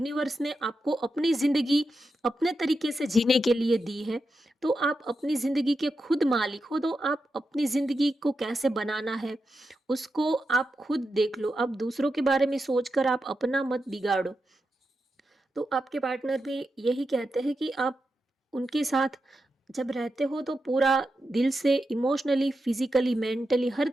ने आपको अपनी ज़िंदगी अपने तरीके से जीने के लिए दी है, तो आप अपनी ज़िंदगी के खुद मालिक हो, तो आप अपनी ज़िंदगी को कैसे बनाना है, उसको आप खुद देख लो। अब दूसरों के बारे में सोचकर आप अपना मत बिगाड़ो। तो आपके पार्टनर भी यही कहते हैं कि आप उनके साथ जब रहते हो तो पूरा दिल से इमोशनली, फिज़िकली, मेंटली हर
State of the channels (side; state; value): both; normal; correlation 0.88